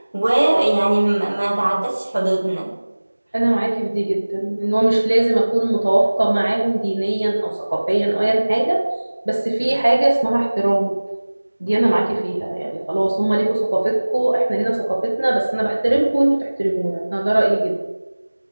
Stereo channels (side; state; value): both; inverted; correlation -1.00